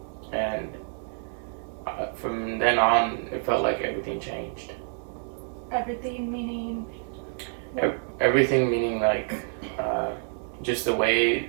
and from then on it felt like everything changed. Everything meaning? Everything meaning like just the way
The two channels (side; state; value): left; silent; 59 dB below the other